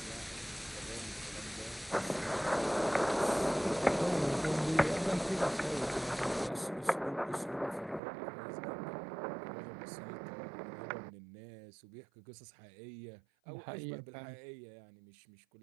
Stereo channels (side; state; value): left; drops out; at 8.0 s